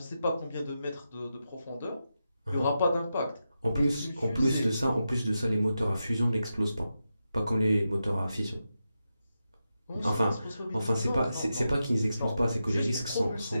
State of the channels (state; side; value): inverted; both; correlation -0.89